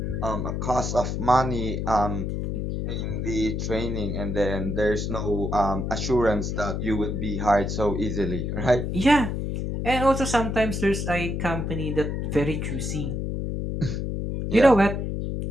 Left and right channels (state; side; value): noise; left; hum, 2 dB below the sound